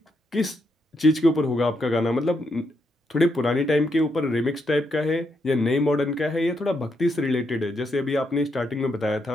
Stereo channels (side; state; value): both; normal; correlation 0.79